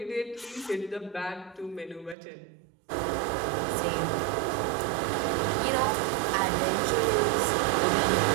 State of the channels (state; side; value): drops out; left; at 2.1 s